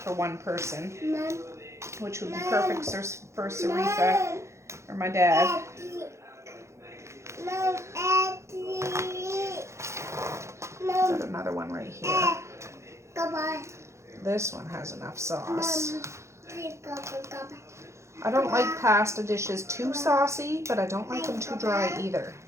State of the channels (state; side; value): late; left; 0.14 ms